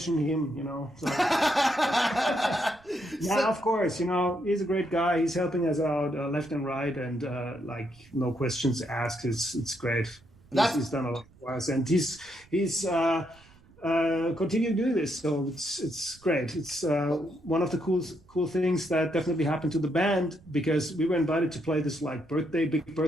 him, So. Of course, he's a great guy. He's helping us out left and right, and no questions asked. It's great. He's done a lot for us, and he's continuing doing this. So it's great. It's one of the cool things that definitely happened to the band, because we were invited to play this like big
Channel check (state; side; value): noise; right; rumble, 27 dB below the sound